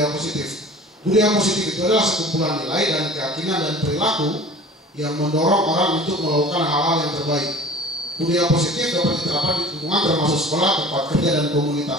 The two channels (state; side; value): normal; both; correlation 0.42